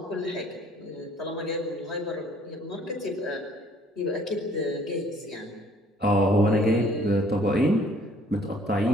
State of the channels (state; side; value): normal; both; correlation 0.58